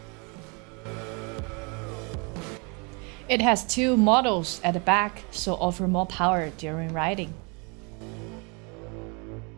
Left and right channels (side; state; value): left; quieter; 32.1 dB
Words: It has two models at the back, so offer more power during riding.